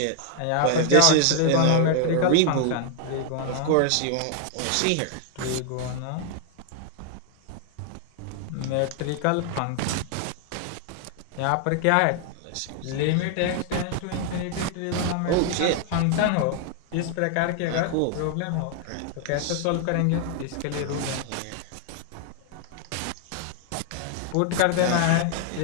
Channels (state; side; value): different; both; correlation 0.00